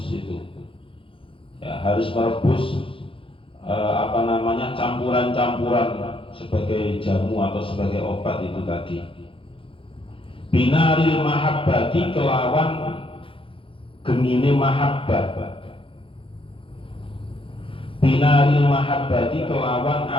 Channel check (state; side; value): late; right; 0.26 ms